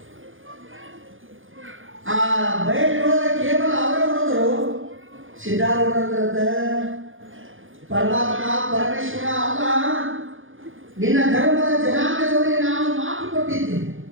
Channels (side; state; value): left; late; 0.58 ms